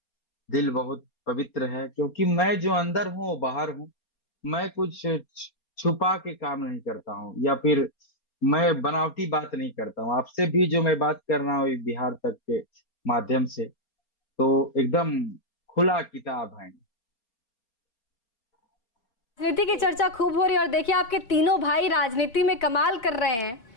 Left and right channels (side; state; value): right; late; 4.3 ms